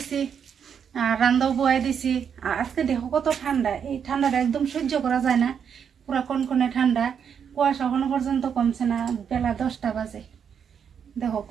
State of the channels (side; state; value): left; quieter; 7.5 dB